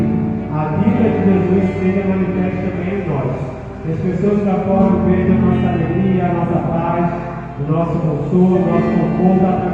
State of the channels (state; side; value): identical; both; correlation 1.00